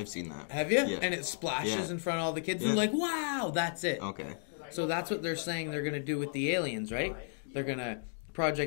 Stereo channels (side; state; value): right; silent; digital silence